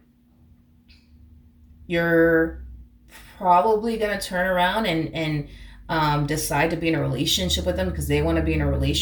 you're probably going to turn around and decide to be in a relationship with them because they want to be in a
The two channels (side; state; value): both; identical; correlation 1.00